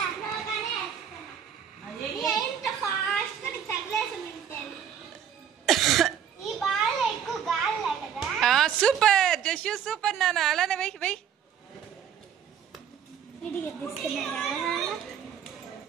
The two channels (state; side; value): quieter; left; 8.5 dB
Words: సూపర్ జషు సూపర్ నాన్న, అలానే వెయ్యి.